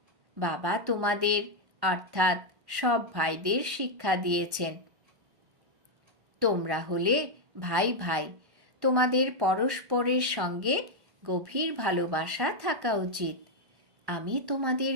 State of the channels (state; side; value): late; left; 1.1 ms